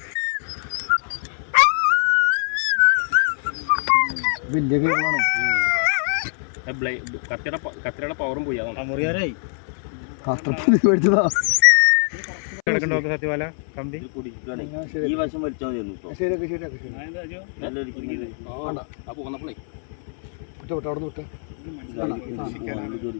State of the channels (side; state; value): right; silent; 58 dB below the other